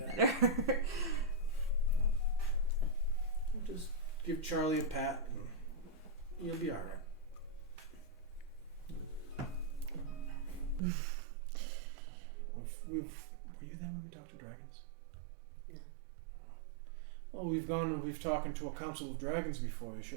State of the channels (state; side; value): drops out; left; at 10.8 s